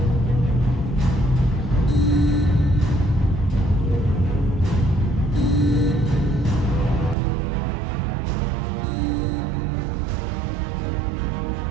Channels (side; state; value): left; drops out; at 7.2 s